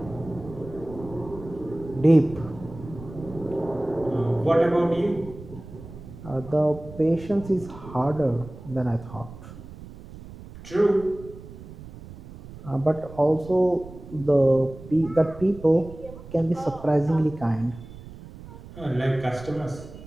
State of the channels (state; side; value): noise; right; rumble, 16 dB below the sound